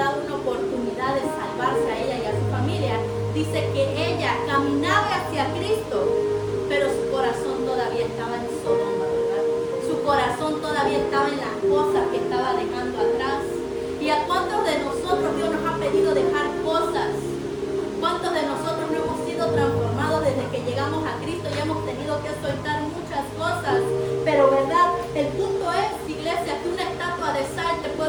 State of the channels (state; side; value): identical; both; correlation 1.00